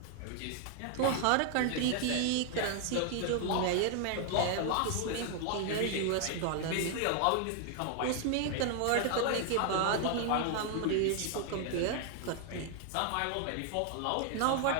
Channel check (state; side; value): different; both; correlation 0.00